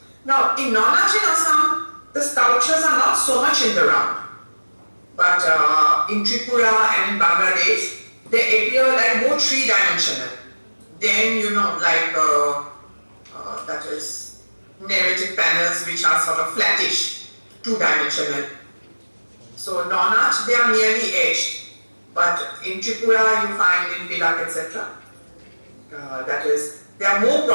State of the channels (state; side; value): inverted; both; correlation -1.00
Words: Now in Nonach in Assam, the sculptures are not so much in the round. But in Tripura and in Bangladesh, they appear like more three-dimensional. Then like that is narrative panels which are sort of flattish, two-dimensional. So Nonach, they are merely edged. But in Tripura you find in Pilak, etc. That is, they are more